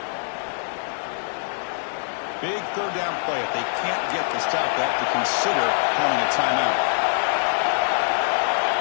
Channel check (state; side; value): silent; right; digital silence